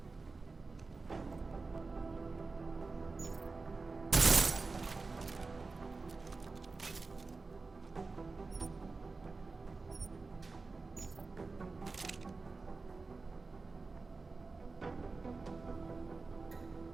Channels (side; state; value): left; quieter; 3.9 dB